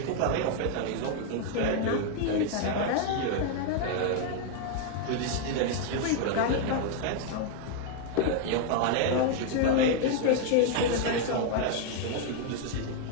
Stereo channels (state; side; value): different; both; correlation 0.00